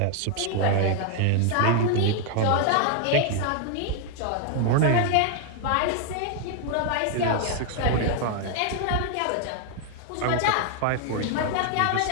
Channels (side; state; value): both; different; correlation 0.00